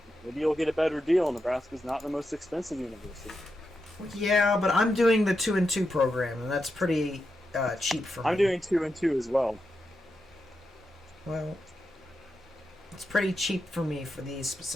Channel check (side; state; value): both; normal; correlation 0.87